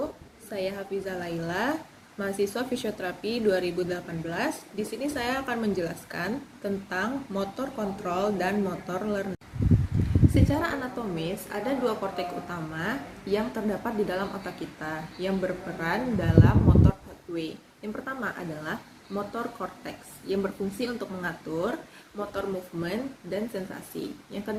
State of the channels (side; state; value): both; identical; correlation 1.00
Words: Saya Hafizah Laila, mahasiswa fisioterapi 2018. Di sini saya akan menjelaskan tentang motor kontrol dan motor learning. Secara anatomis, ada dua korteks utama yang terdapat di dalam otak kita yang berperan dalam motor pathway. Yang pertama adalah motor korteks yang berfungsi untuk mengatur motor movement dan sensasi. Yang